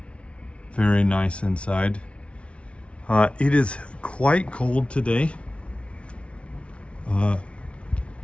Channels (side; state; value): right; late; 0.060 ms